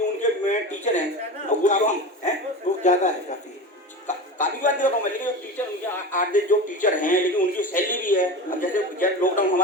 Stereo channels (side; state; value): both; normal; correlation 0.28